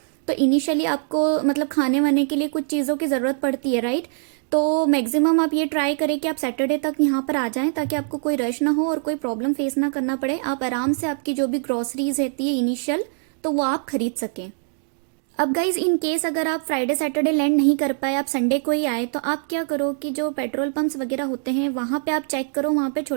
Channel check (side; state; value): left; silent; digital silence